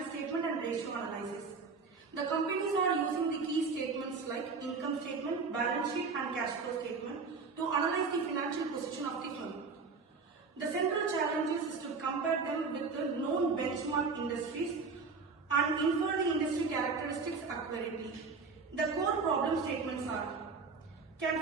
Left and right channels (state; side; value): quieter; left; 4.6 dB